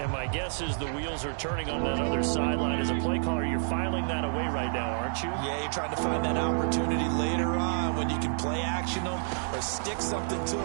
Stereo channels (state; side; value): silent; left; 58 dB below the other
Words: my guess is the wheels are turning on that other sideline. As a play caller, you're filing that away right now, aren't you? Yeah, you're trying to find that opportunity later on when you can play action them or stick something to